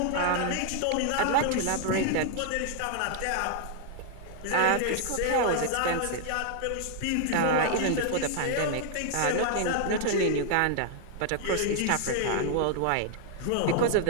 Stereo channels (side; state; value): both; different; correlation 0.00